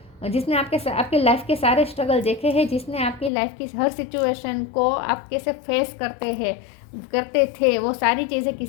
आपके लाइफ के सारे स्ट्रगल देखे हैं, जिसने आपकी लाइफ की हर सिचुएशन को आप कैसे फेस करते थे, वो सारी चीज़ें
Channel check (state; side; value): drops out; right; at 3.3 s